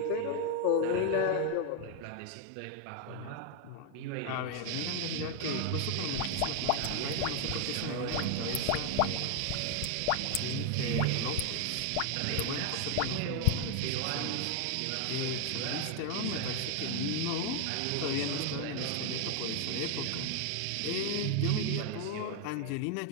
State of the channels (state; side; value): different; both; correlation 0.01